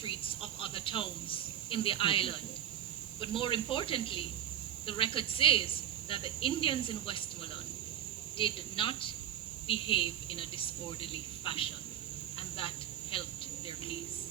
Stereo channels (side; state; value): left; quieter; 10.6 dB